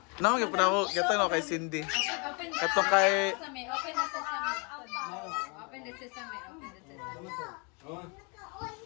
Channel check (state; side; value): quieter; right; 32.7 dB